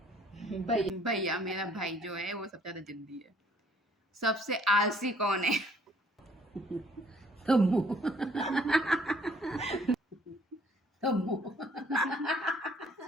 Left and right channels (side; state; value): both; normal; correlation 0.60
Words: भैया, मेरा भाई जो है वो सबसे ज्यादा जिद्दी है। सबसे आलसी कौन है? तम्मू।